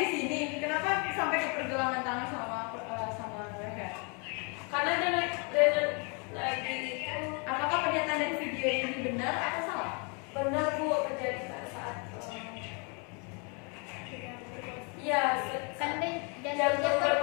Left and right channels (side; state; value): right; quieter; 34.4 dB